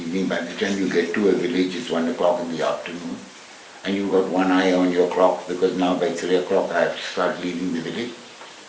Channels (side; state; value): both; identical; correlation 1.00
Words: By the time you get to a village, it's 1 o'clock in the afternoon, and you've got one eye on your clock because now by 3 o'clock I have to start leaving the village.